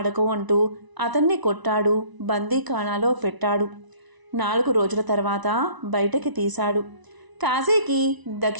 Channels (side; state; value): left; late; 1.0 ms